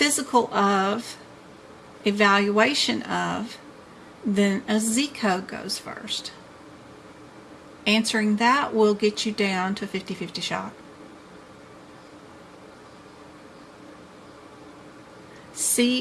of, evaluation of, then a Z code goes first. Answering that will get you down to a 50-50 shot.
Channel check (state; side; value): identical; both; correlation 1.00